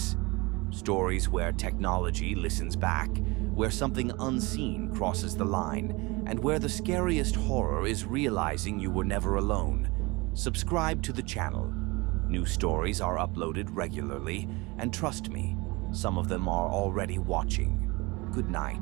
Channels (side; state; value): left; quieter; 24.7 dB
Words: stories where technology listens back, where something unseen crosses the line, and where the scariest horror is realizing you were never alone, subscribe to the channel. New stories are uploaded regularly, and trust me, some of them are already watching. Good